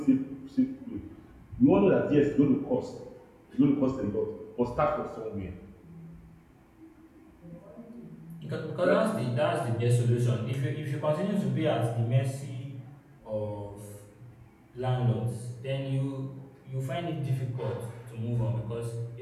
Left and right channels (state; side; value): identical; both; correlation 1.00